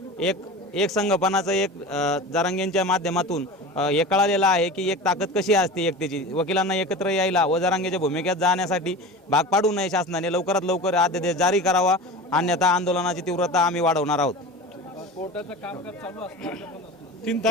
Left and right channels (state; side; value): normal; both; correlation 0.32